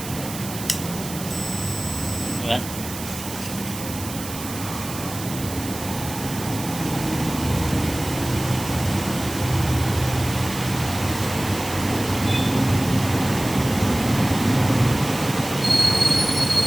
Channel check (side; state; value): right; noise; hiss, 10 dB below the sound